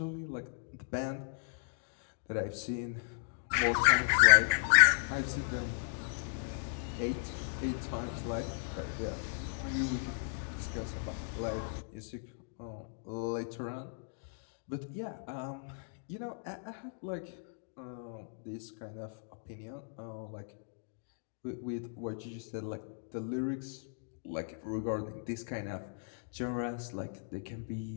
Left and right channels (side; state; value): right; silent; digital silence